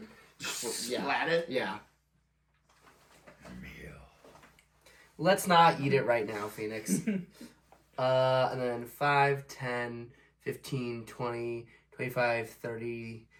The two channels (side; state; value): both; identical; correlation 1.00